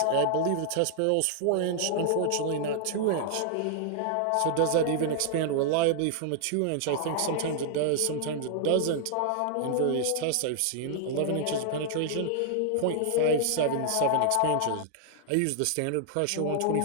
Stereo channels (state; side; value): different; both; correlation -0.01